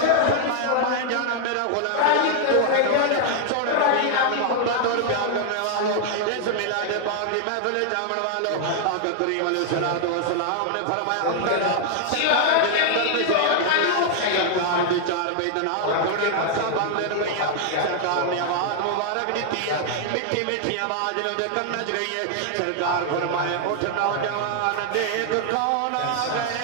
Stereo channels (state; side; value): different; both; correlation 0.00